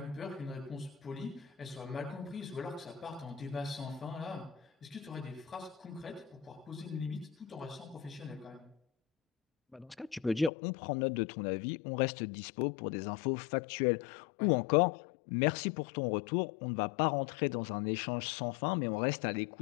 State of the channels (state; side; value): drops out; right; at 10.5 s